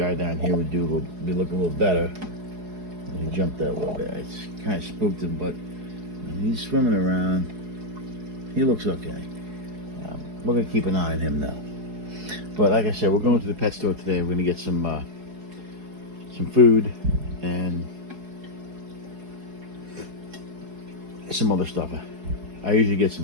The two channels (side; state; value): left; late; 4.7 ms